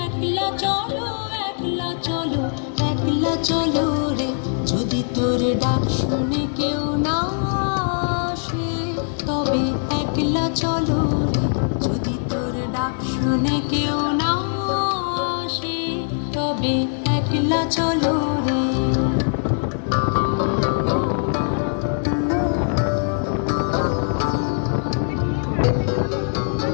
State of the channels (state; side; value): silent; right; digital silence